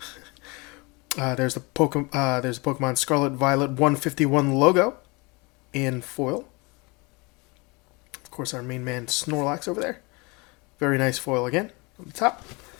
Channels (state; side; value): quieter; right; 27.5 dB